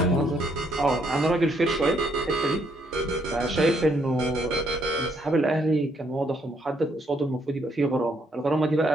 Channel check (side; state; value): both; normal; correlation 0.72